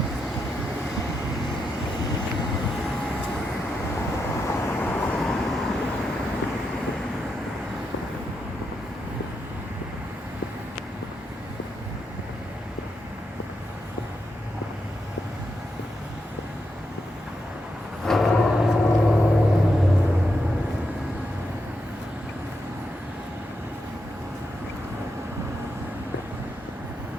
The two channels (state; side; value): normal; both; correlation 0.84